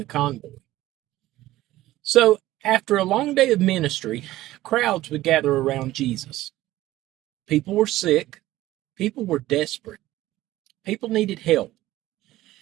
convoy. So, after a long day of ministry, crowds would gather around Jesus. People were sick, people were desperate, people needed help.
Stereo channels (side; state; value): left; quieter; 15.9 dB